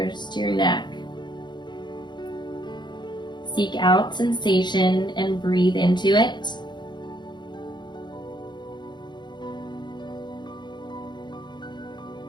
to your neck. Seek out sensation and breathe into it.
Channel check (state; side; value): late; right; 0.22 ms